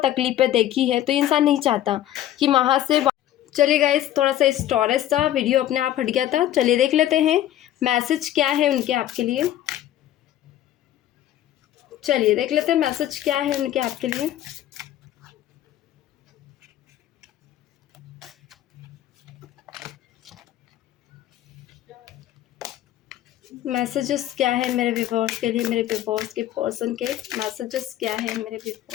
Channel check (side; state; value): right; quieter; 12.6 dB